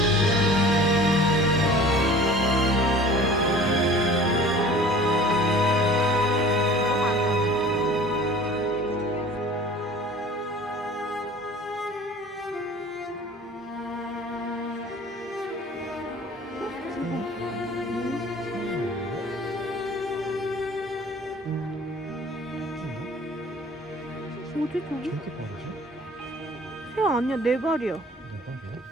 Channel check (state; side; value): normal; both; correlation 0.45